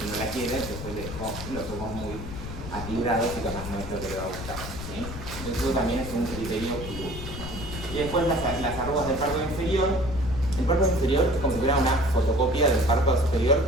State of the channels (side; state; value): left; noise; rumble, 9 dB below the sound